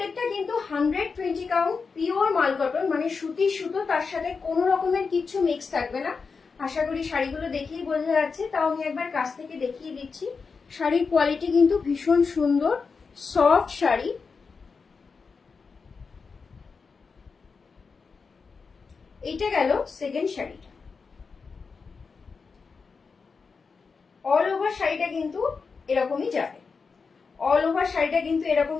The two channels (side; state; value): right; quieter; 5.0 dB